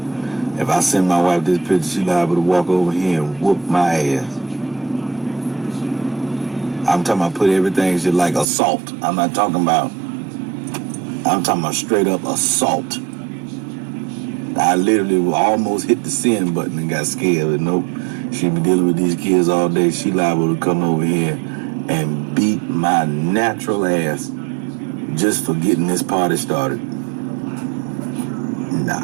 If I send my wife this picture, she liable to walk over here and whoop my ass. I'm talking about put everything shit like assault. I'm talking about straight up assault. I literally almost hit the send button and got scared. But nope, she been dealing with these kids all day. She liable to come over here and beat my natural ass just for getting this party started. Nah.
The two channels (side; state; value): left; drops out; at 8.5 s